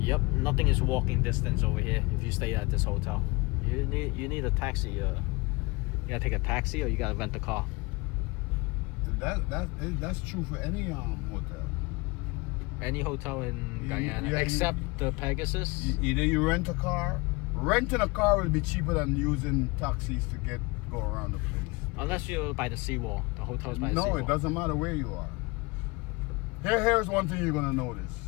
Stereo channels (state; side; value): quieter; right; 25.6 dB